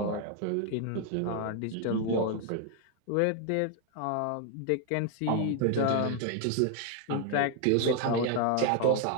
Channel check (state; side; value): different; both; correlation 0.00